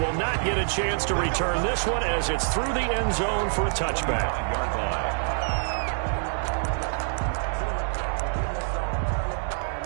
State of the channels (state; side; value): silent; left; 61 dB below the other